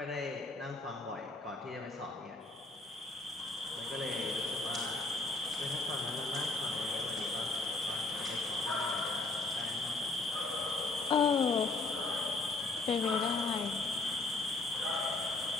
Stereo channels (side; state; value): right; quieter; 3.2 dB